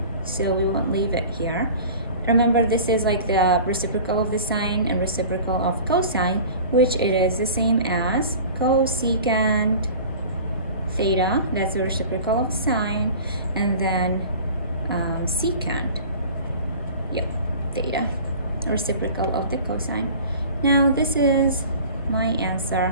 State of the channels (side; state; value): both; inverted; correlation -0.41